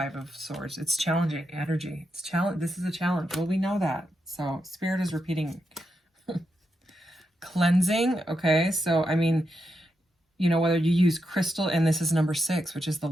of Swords. It's challenging energy. It's challenge. This is a challenge. Well, we know that. So Spirit is repeating. Cleansing. Okay. So, I mean, you know, whether you use crystal, and this is number 6, which is the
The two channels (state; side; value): normal; both; correlation 0.85